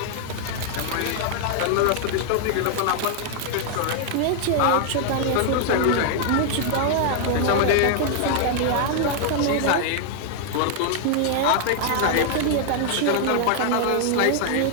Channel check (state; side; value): different; both; correlation 0.00